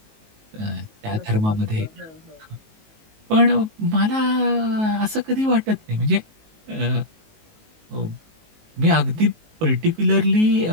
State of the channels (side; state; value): left; late; 19 ms